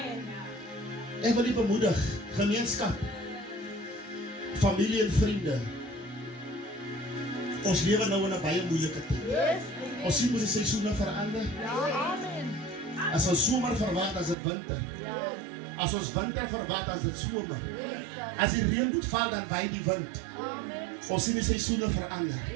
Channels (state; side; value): drops out; left; at 14.4 s